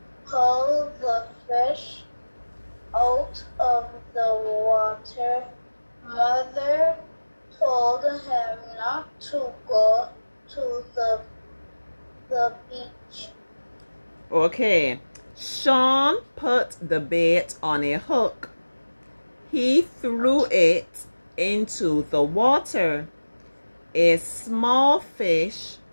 pulled the fish out of the water. Mother told him not to go to the beach. Okay. Sean put the bait on a hook. He threw it into the water. A small fish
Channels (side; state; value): both; inverted; correlation -1.00